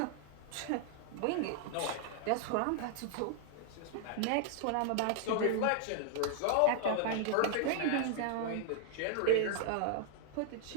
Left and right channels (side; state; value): both; different; correlation 0.00